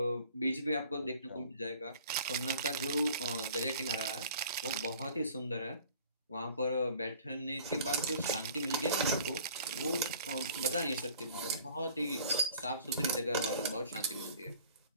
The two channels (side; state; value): both; inverted; correlation -0.50